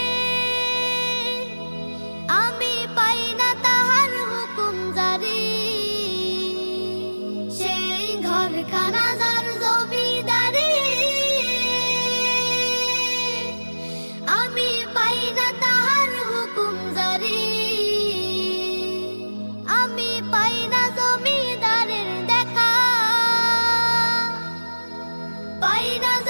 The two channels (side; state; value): both; inverted; correlation -1.00